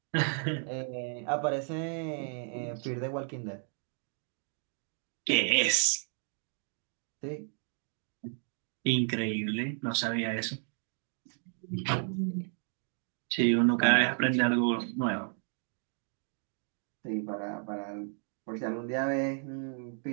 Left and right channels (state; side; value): silent; left; 56 dB below the other